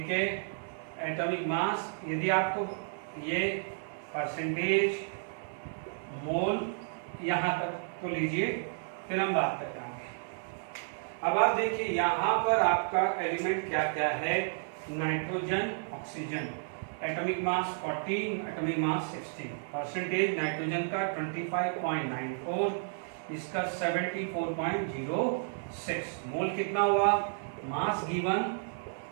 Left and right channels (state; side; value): silent; left; digital silence